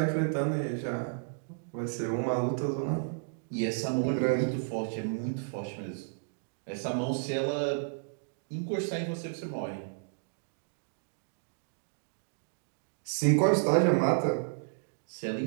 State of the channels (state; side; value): silent; left; digital silence